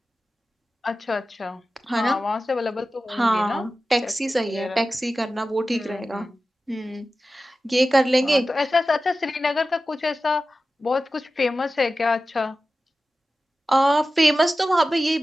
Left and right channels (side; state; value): both; normal; correlation 0.94